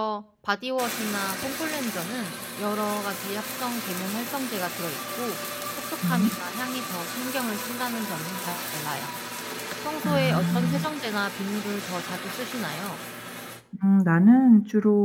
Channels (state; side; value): identical; both; correlation 1.00